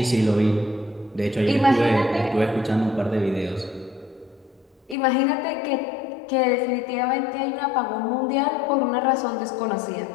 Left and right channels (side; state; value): right; drops out; at 5.0 s